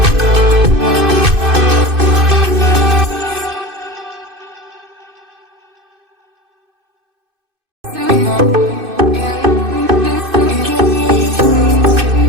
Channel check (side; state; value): left; late; 2.6 ms